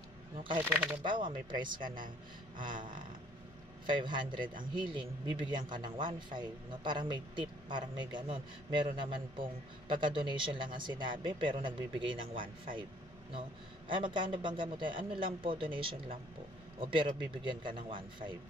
No, kahit po halimbawa may price ka ng 500 ang healing, bibigyan ka ng 1.5, no? Parang may tip, parang may ganun. Meron naman pong pagka-donation lang ang sinabi, pero nagbibigay ng 1.5, no? Ay, magkano bang gamot? Ano lang po, donation lang po. O pero bibigyan ka ng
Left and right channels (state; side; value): noise; left; rumble, 24 dB below the sound